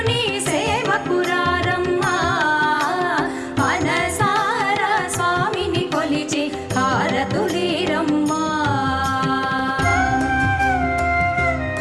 సేవకురారమ్మా మనసారా స్వామిని కొలిచి హారతులీరమ్మా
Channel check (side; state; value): both; identical; correlation 1.00